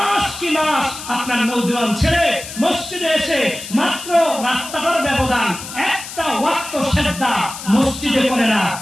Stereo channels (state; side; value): noise; left; hiss, 11 dB below the sound